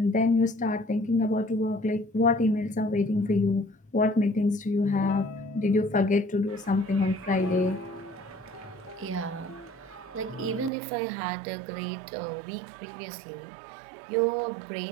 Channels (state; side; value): drops out; left; at 10.7 s